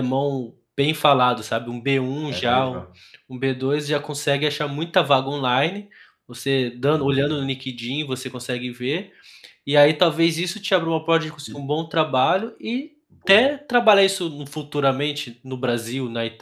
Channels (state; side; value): identical; both; correlation 1.00